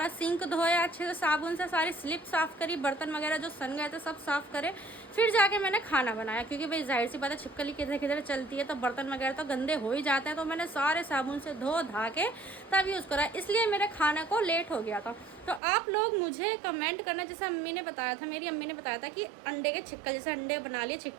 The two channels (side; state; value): left; drops out; at 15.6 s